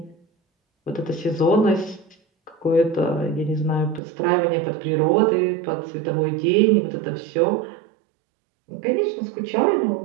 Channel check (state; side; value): drops out; left; at 4.0 s